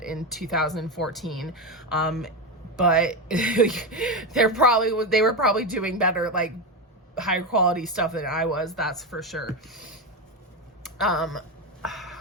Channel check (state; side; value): normal; both; correlation 0.14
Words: in 2014, but they were probably doing better, like high quality stuff than I was, that's for sure.